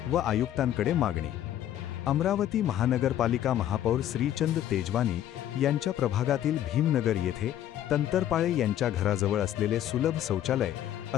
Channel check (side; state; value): right; quieter; 11.7 dB